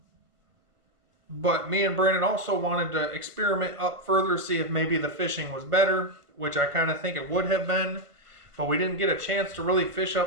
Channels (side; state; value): left; late; 1.4 ms